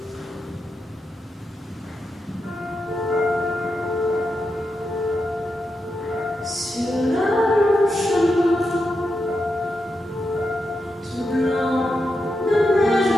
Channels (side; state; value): both; normal; correlation 0.86